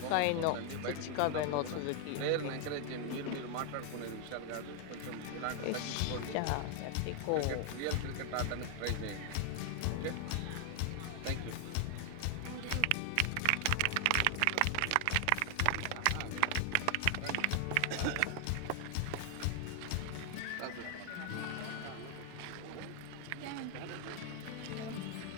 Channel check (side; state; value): both; different; correlation 0.00